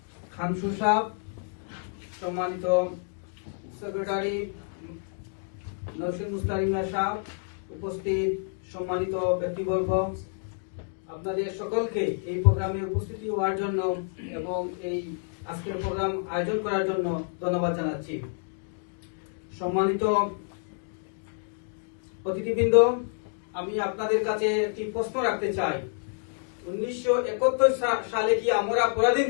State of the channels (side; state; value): right; silent; digital silence